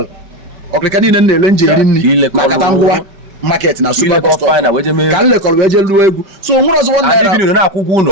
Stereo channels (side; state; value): left; late; 5.2 ms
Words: ọkịrịka niile na-ele njeri nri na kata ngwa market na super bus stop ka nlekọrọ wee je lụọ egwu so onwere ọzọ